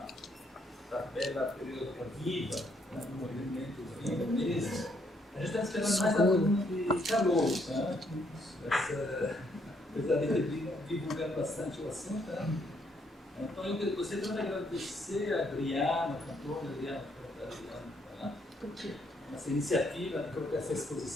tabela periódica viva, né, no movimento vivo mesmo. A gente está esperando mais alunos de calor, né? Apesar de ter divulgado bastante o assunto, né? Então eu gostaria de agradecer a Adriana, a cantora Adriana, essa iniciativa de colocar essa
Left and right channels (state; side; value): normal; both; correlation 0.71